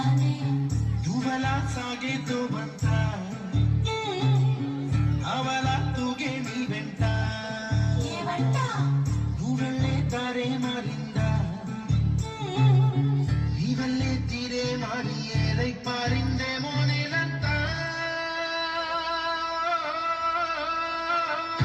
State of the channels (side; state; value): both; identical; correlation 1.00